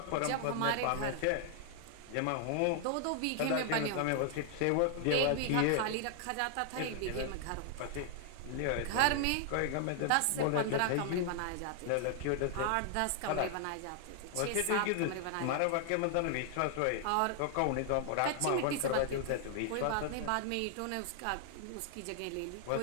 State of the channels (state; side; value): different; both; correlation 0.00